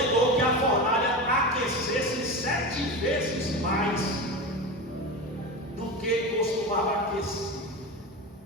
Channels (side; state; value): both; normal; correlation 0.24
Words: que a fornalha aquecesse 7 vezes mais do que costumava aquecer.